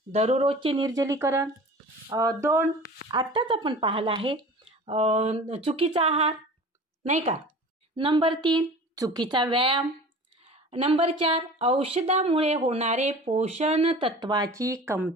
दररोजचे निर्जलीकरण. 2, आत्ताच आपण पाहिलं आहे चुकीचा आहार, नाही का? नंबर 3, चुकीचा व्यायाम. नंबर 4, औषधामुळे होणारे पोषण तत्वाची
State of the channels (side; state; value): both; normal; correlation 0.40